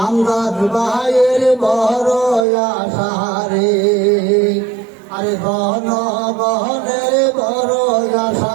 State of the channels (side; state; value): left; drops out; at 2.5 s